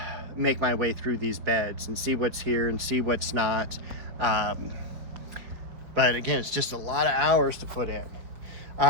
make my way through these beds and see what's here and see what's not. But again, it's just a lot of hours to put in.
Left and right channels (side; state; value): left; late; 5.3 ms